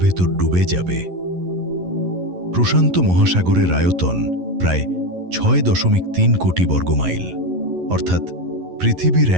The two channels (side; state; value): left; late; 11 ms